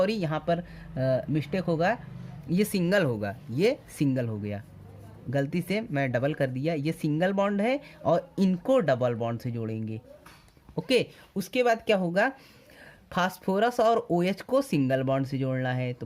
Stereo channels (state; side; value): identical; both; correlation 1.00